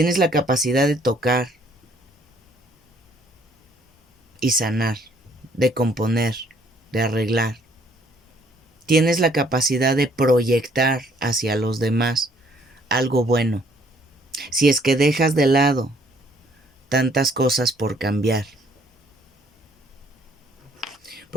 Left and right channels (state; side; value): normal; both; correlation 0.63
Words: la capacidad de tocar, y sanar, de componer, de arreglar. Tienes la capacidad de proyectar hacia los demás algo bueno, si es que dejas de lado tantas cosas por cambiar.